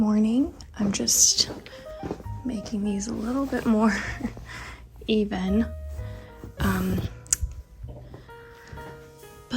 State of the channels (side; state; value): both; identical; correlation 1.00